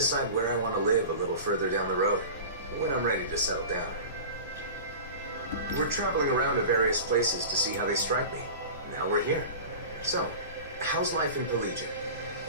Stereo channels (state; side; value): inverted; both; correlation -0.34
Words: where I want to live a little further down the road, when I'm ready to settle down. We're traveling around to various places to see how they strike me. Now we're here. So, how's life in Plegian?